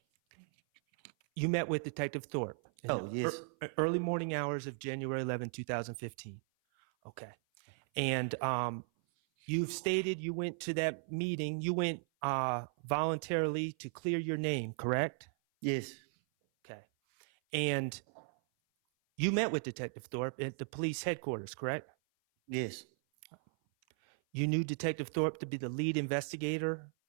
You met with Detective Thorpe. Oh, yes. Early morning hours of January 11th, 2015. Okay. And you've stated you went to that meeting. You went voluntarily to clear your name, correct? Yes. Okay. And you met with Detective Thorpe at the police headquarters, correct? Yes. You knew Detective Thorpe to be the lead investigator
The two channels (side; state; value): left; silent; 53 dB below the other